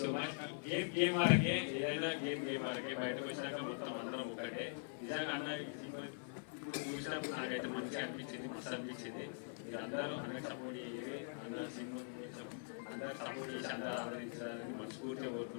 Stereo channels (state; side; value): silent; right; digital silence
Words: so much. Game ఆరకే ఏదైనా గేమ్ ఆరకే బయటకు వచ్చినాక మొత్తం అందరం ఒకటే. నిజంగా అన్న ఇప్పుడు చూసినప్పుడు నాకైతే మంచిగా అనిపించింది, మస్తు అనిపించింది. మీరు అందరూ అన్నకి సపోర్ట్ చేయాలి, అందరూ సినిమా అందరూ సపోర్ట్ చేసి అందరూ ఆదరించాలని మనస్ఫూర్తిగా